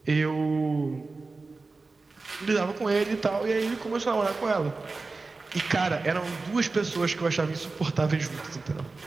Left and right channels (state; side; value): quieter; left; 3.8 dB